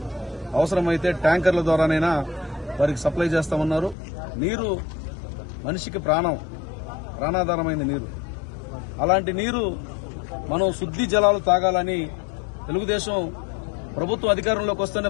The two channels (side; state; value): right; drops out; at 4.0 s